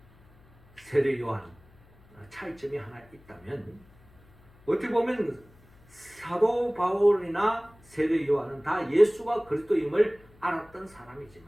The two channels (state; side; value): noise; left; hum, 27 dB below the sound